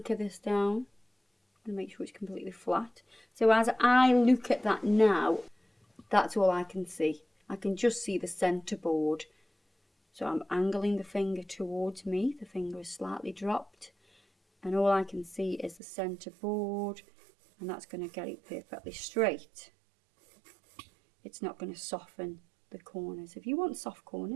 this down. And make sure it's completely flat. So as I look at that now, that's all I can see. I can just see the centre board. So I'm angling the finger towards me. The finger is slightly dropped. And all I can see is the centre board. And that's going to get it perfectly straight. It's not going to soften the corners. If you want soft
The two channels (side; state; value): left; drops out; at 15.8 s